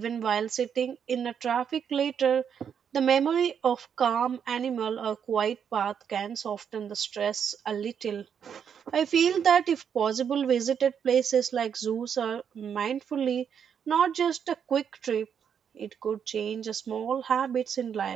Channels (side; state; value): left; quieter; 7.7 dB